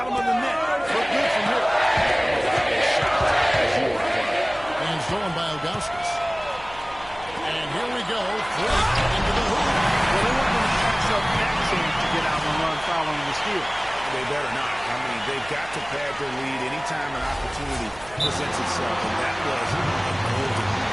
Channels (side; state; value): right; noise; hum, 20 dB below the sound